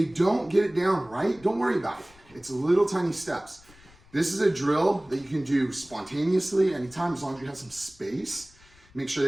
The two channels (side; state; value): left; noise; rumble, 26 dB below the sound